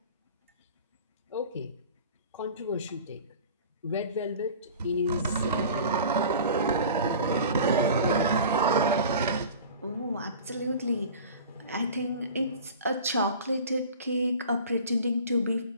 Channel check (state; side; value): inverted; both; correlation -0.40